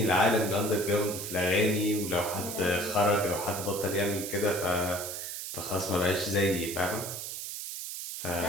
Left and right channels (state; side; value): noise; right; hiss, 7 dB below the sound